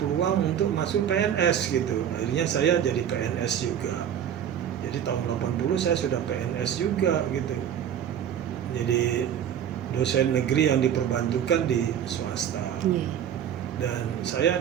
untuk masuk PNS gitu. Akhirnya saya jadi PNS juga. Jadi tahun 80 saya sudah PNS juga gitu. Jadi dosen negeri yang diperbantukan di swasta. Dan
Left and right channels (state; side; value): quieter; left; 9.4 dB